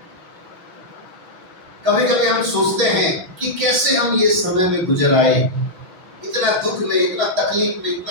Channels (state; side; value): late; left; 5.1 ms